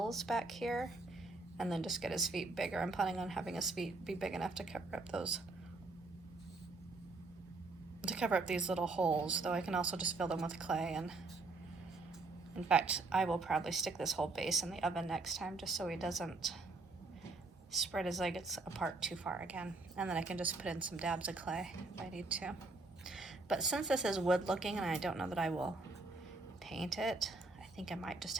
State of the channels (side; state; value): left; quieter; 3.4 dB